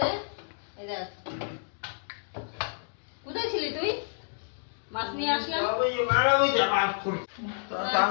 এই দেখ। কোথায় ছিলি তুই? মাছ নিয়ে আসলাম।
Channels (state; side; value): silent; right; digital silence